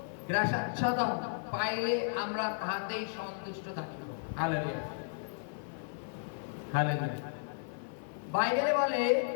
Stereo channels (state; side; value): silent; right; 55 dB below the other